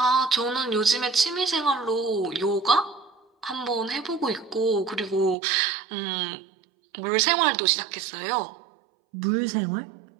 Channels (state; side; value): drops out; left; at 5.4 s